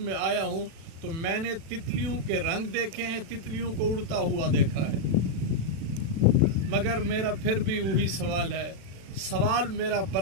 आया हूँ, तो मैंने तितलियों के रंग देखे हैं, तितलियों को उड़ता हुआ देखा है। मगर मेरा फिर भी वही सवाल है, सवाल मेरा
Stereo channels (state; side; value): late; left; 36 ms